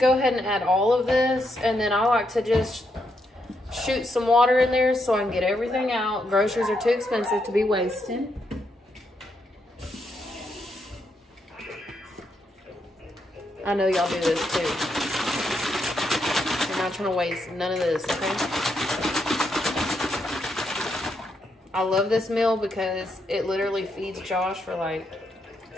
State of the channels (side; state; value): both; normal; correlation 0.80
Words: ahead and add all of this, and then I like to just shoot some water in there so I can get everything out. Groceries are too expensive to be wasted. I know y'all do this too. You're not trying to waste none of this, okay? I love this meal because it literally feeds Josh for like